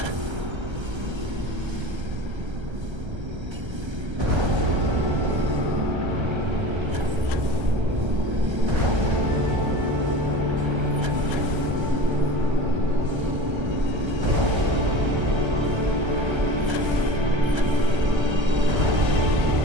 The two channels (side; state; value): left; late; 1.3 ms